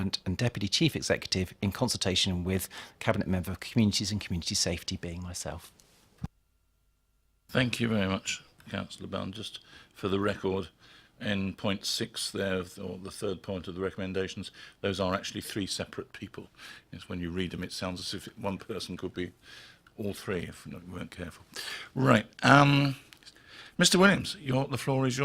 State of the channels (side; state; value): both; identical; correlation 1.00